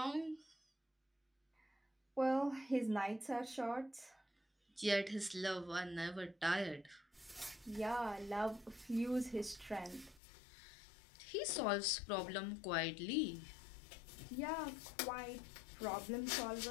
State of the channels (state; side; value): drops out; right; at 10.2 s